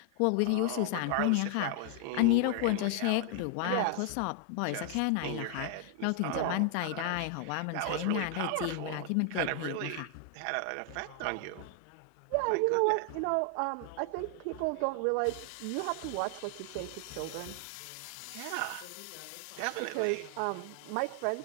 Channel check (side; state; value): both; different; correlation 0.00